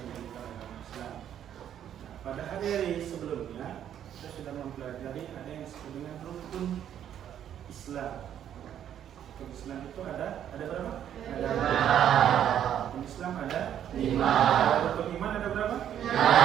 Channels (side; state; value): left; quieter; 10.0 dB